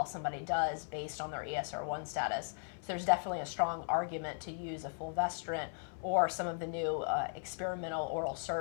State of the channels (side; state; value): right; silent; 53 dB below the other